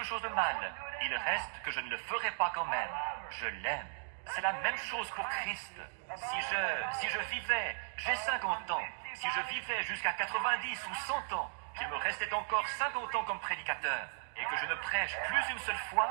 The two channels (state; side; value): silent; left; digital silence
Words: chose de mal. Il reste que je ne le ferai pas quand même. Je l'aime. C'est la même chose pour Christ. Si je vivais, j'ai 50 ans, si je vivais jusqu'à 90 ou 100 ans, qu'il me restait encore 50 ans comme prédicateur, et que je ne prêche plus une seule fois,